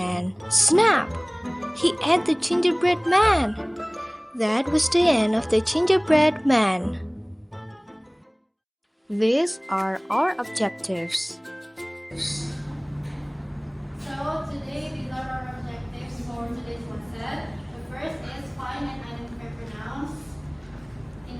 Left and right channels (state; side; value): identical; both; correlation 1.00